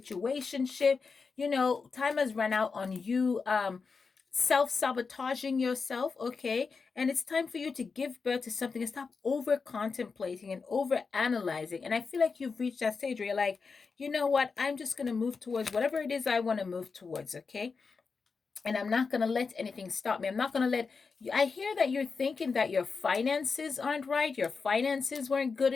Time has run out on you self-sabotaging yourself, okay? And it's time for you to give birth to something and stop over contemplating and over analyzing. And I feel like you've reached that stage where you're like, you know what? I'm just going to move towards whatever it is I want to move towards, okay? And I'm not going to let anything stop me. I'm not going to let you. I hear that you're thinking that your finances aren't right. Your finances weren't good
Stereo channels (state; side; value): quieter; right; 4.9 dB